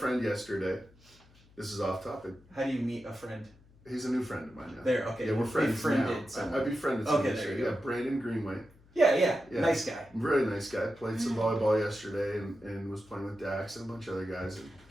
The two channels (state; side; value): noise; left; hum, 27 dB below the sound